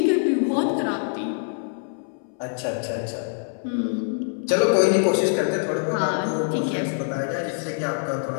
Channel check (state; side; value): silent; right; 62 dB below the other